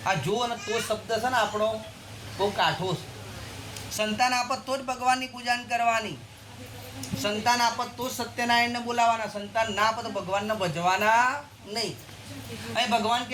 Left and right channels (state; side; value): identical; both; correlation 1.00